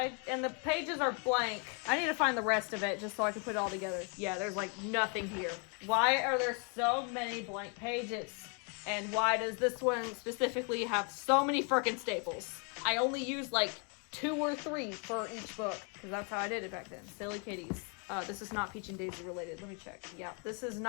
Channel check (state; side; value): quieter; right; 37.4 dB